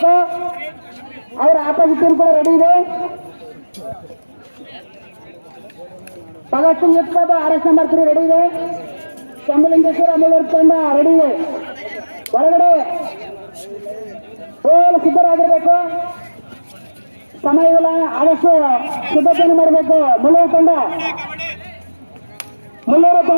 ಅವರ ಆಪೋಸಿಟ್ ಟೀಮ್ ಕೂಡ ರೆಡಿ ಇದೆ. ಭಗತ್ ಸಿಂಗ್ ಯುತ್ಬಾಬಾ RS ನಂಬರ್ 3 ರೆಡಿ ಇದೆ. ಶಂಭುಲಿಂಗೇಶ್ವರ ಮುಳ್ಳೂರು ತಂಡ ರೆಡಿ ಇದೆ. ಒಳಗಡೆ ಸಿದ್ಧರಾಗಿರ್ಬೇಕು. ಸಮಯವಿಲ್ಲ, ಆದಷ್ಟು ಸಿದ್ಧತೆಯನ್ನು ಮಾಡಬೇಕು. ಮುಳ್ಳೂರು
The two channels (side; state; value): both; inverted; correlation -1.00